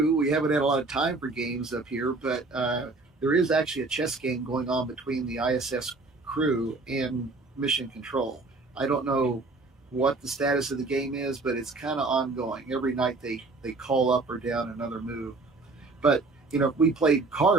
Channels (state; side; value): quieter; left; 3.5 dB